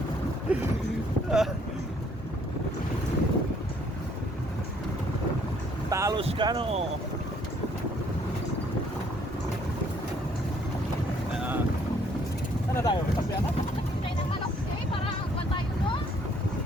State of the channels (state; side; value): normal; both; correlation 0.64